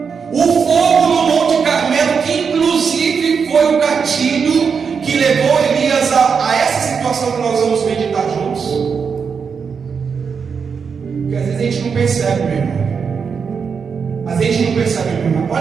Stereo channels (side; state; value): left; quieter; 6.0 dB